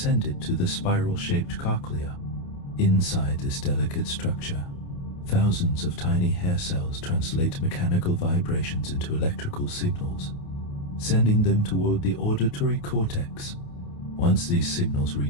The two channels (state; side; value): late; right; 28 ms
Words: it to the spiral-shaped cochlea. Inside this delicate structure, thousands of tiny hair cells translate mechanical vibrations into electrical signals, sending them toward the auditory cortex. Once these signals